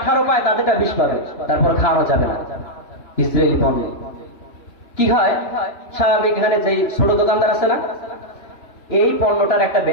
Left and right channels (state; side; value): late; right; 2.8 ms